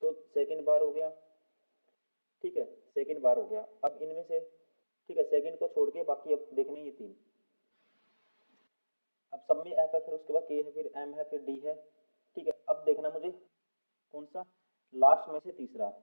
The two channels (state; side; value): inverted; both; correlation -1.00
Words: तो सेकंड बार हो गया। ठीक है, सेकंड बार हो गया। अब इनमें से, ठीक है, सेकंड को छोड़ के बाकी अब देखने ये 3। अब सब में f है, फिर उसके बाद k है, फिर m है, फिर d है। ठीक है, अब देखना मुझे कौन सा लास्ट में से तीसरा।